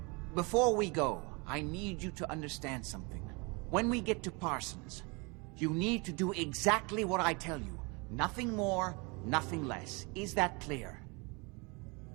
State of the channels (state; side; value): quieter; left; 29.2 dB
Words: Before we go, I need you to understand something. When we get to Parsons, you need to do exactly what I tell you. Nothing more, nothing less. Is that clear?